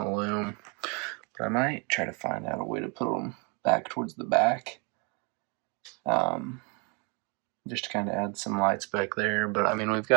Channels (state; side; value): quieter; left; 33.1 dB